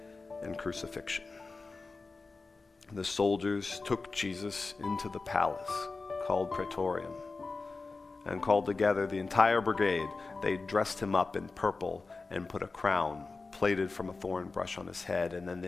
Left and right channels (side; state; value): right; quieter; 3.9 dB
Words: and crucifixion. The soldiers took Jesus into the palace, called Praetorium, and called together the entire brigade. They dressed him up in purple and put a crown plaited from a thorn bush on his head, and then